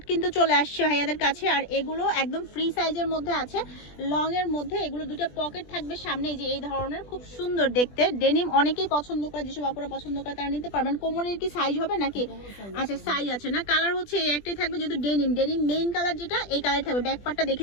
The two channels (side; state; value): right; late; 20 ms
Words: কিন্তু চলে আসছে ভাইয়াদের কাছে। আর এগুলো একদম ফ্রি সাইজের মধ্যে আছে, লং এর মধ্যে। এগুলো দুটো পকেট থাকবে সামনে, যে এই ধরনের, খুব সুন্দর দেখতে। ডেনিম অনেকেই পছন্দ করে, যেসব আপুরা পছন্দ করে তারা নিতে পারবেন। কোমরের কি সাইজ হবে নাকি? আচ্ছা, সাইজ আছে না। কালার হচ্ছে এই একটাই থাকবে, যেহেতু ডেনিম মেইন কালার যেটা, এই কালার থাকবে। ব্যাক পার্টটা